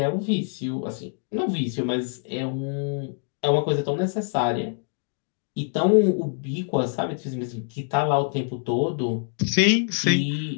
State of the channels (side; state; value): right; silent; 61 dB below the other